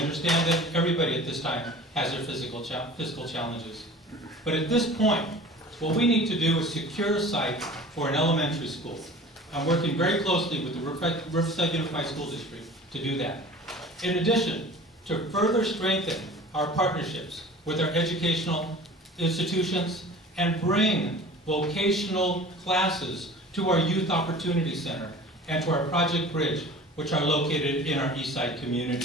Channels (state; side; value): normal; both; correlation 0.42